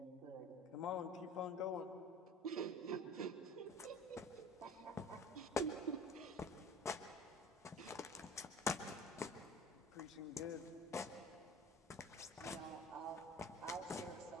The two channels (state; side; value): normal; both; correlation 0.44